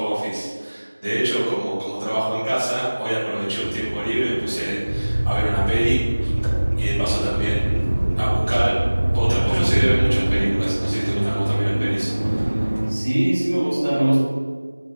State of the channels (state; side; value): inverted; both; correlation -1.00